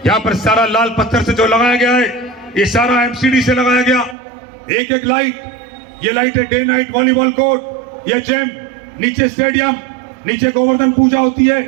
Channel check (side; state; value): left; drops out; at 4.2 s